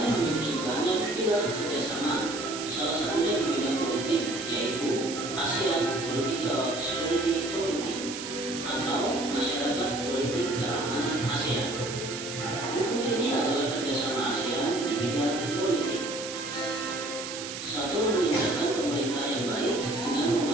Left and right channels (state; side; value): noise; right; hiss, 8 dB below the sound